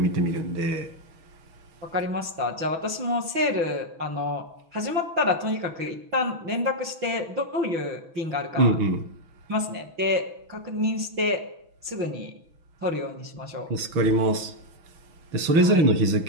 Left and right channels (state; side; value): late; left; 6.1 ms